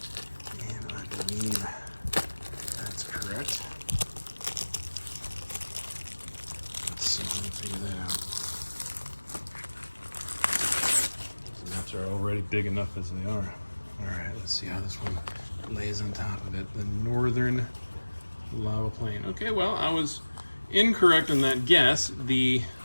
and I believe that's correct. Let's see if we can figure that out. These maps are already big enough as they are. Alright, let's see how this one lays on top of it. The Northern Lava Plain. Okay, well, I was incorrect on that guess. The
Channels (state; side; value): inverted; both; correlation -1.00